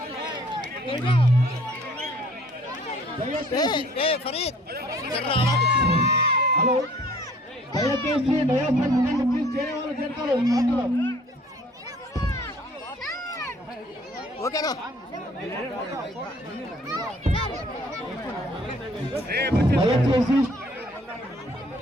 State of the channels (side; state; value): both; normal; correlation 0.56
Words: హలో, దయచేసి ప్లీజ్ చేరే వాళ్ళు చేస్తారు. ఓకేనా?